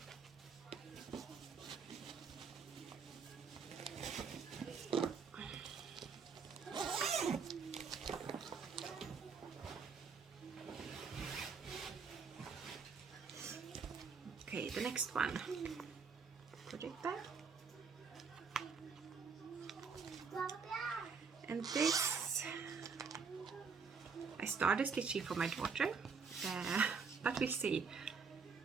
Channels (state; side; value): quieter; left; 5.5 dB